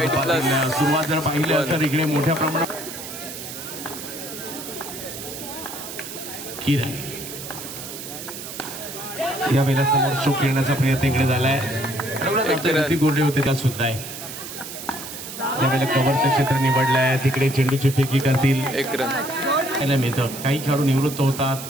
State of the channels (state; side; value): noise; right; hiss, 10 dB below the sound